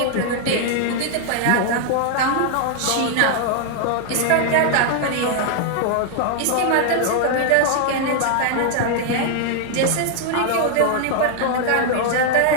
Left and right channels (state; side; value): different; both; correlation 0.00